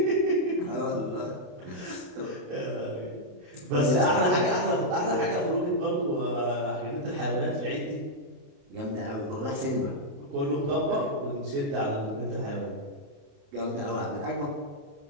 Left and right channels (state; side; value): late; left; 28 ms